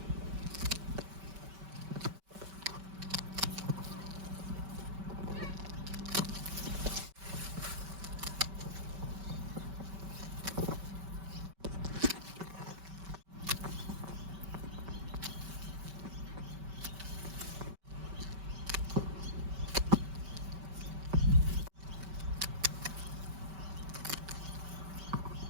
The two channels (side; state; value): left; late; 5.2 ms